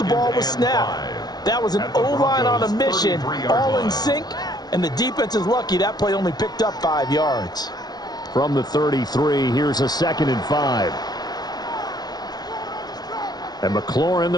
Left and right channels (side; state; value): right; late; 0.19 ms